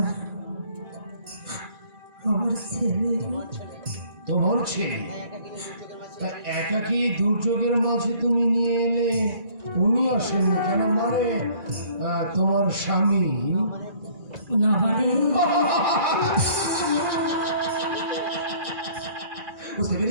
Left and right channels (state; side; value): late; left; 2.0 ms